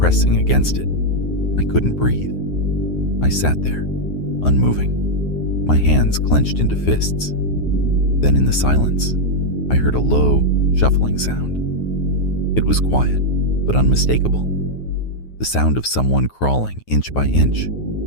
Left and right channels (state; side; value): late; right; 9.5 ms